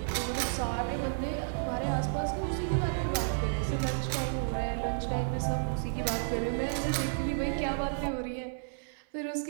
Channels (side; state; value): left; silent; digital silence